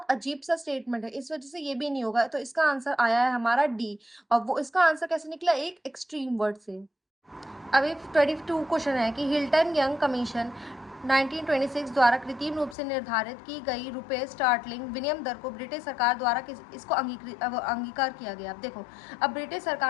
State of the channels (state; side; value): drops out; right; at 12.8 s